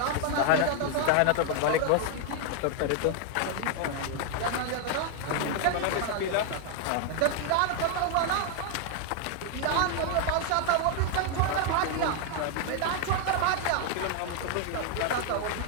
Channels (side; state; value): both; different; correlation 0.00